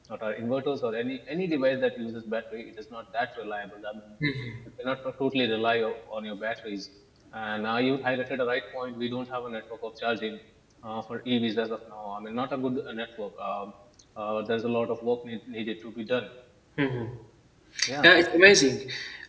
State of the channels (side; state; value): both; identical; correlation 1.00